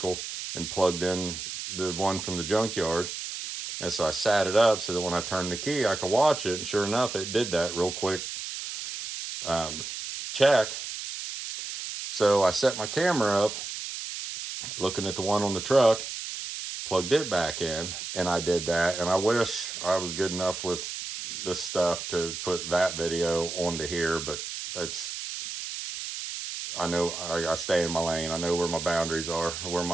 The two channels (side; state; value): right; noise; hiss, 7 dB below the sound